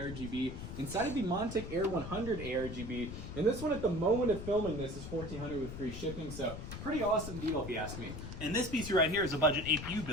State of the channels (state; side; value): noise; left; rumble, 8 dB below the sound